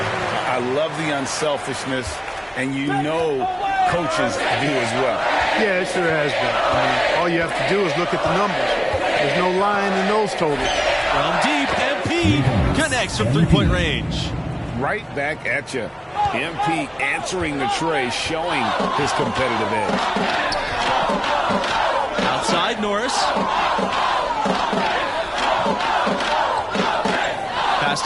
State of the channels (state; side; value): identical; both; correlation 1.00